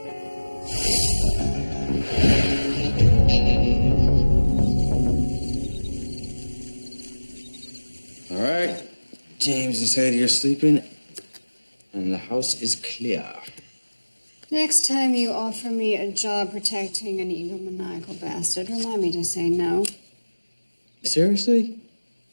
All right. James is said you're sleeping, and the house is clear. Next time you offer me a job protecting an egomaniacal bastard, remind me to say no. Seriously?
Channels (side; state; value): both; inverted; correlation -1.00